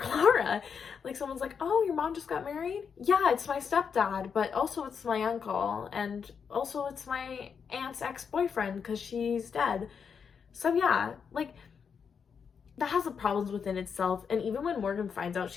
Like, someone's like, oh, your mom just got married? Yeah, it's my stepdad, but also it's my uncle, and also it's my aunt's ex-boyfriend because she's dead. So yeah, like, that has the problems within itself. And even when Morgan finds out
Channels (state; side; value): quieter; right; 6.5 dB